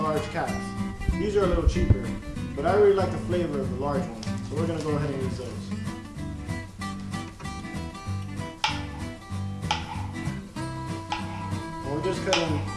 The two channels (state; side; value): identical; both; correlation 1.00